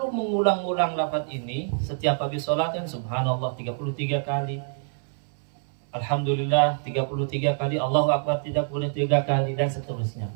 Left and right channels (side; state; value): left; silent; 60 dB below the other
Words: mengulang-ulang lafaz ini setiap habis sholat, kan Subhanallah 33 kali, Alhamdulillah 33 kali, Allahu Akbar 33 kali, dan seterusnya.